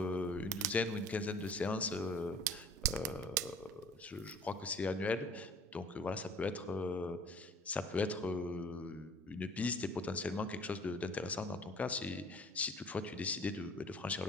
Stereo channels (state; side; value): normal; both; correlation 0.50